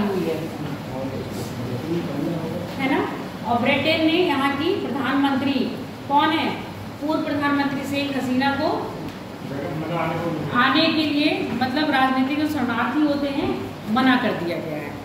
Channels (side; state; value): both; identical; correlation 1.00